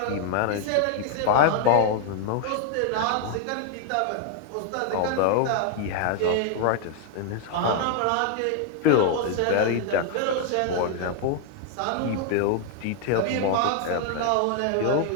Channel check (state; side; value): different; both; correlation 0.00